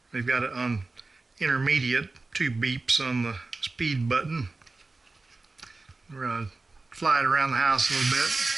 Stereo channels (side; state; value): left; quieter; 3.5 dB